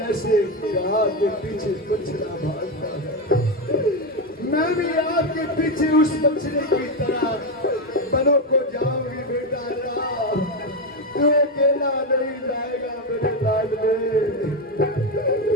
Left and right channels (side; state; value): both; normal; correlation 0.09